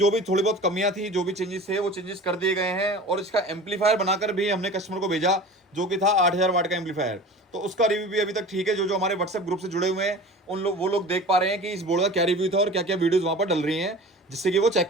भी थोड़ी बहुत कमियां थी, जो भी चेंजेस थे वो चेंजेस कर दिए गए हैं और इसका एम्पलीफायर बनाकर भी हमने कस्टमर को भेजा जो कि था 8000 वाट का एम्पलीफायर। तो उसका रिव्यू भी अभी तक ठीक है। जो जो हमारे व्हाट्सएप ग्रुप से जुड़े हुए हैं उन लोग वो लोग देख पा रहे हैं कि इस बोर्ड का क्या रिव्यू था और क्या क्या वीडियोज वहां पर डल रही हैं, जिससे कि वो चेक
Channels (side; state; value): both; normal; correlation 0.38